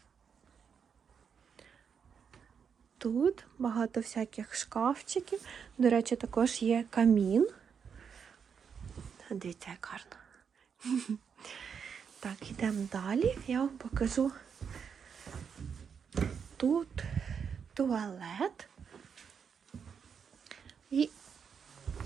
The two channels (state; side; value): quieter; left; 6.8 dB